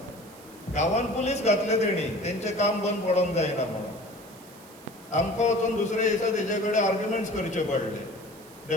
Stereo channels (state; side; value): noise; right; hiss, 22 dB below the sound